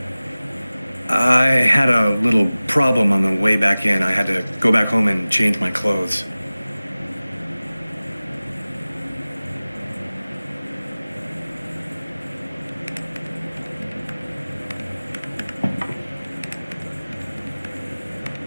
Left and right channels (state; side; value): inverted; both; correlation -0.98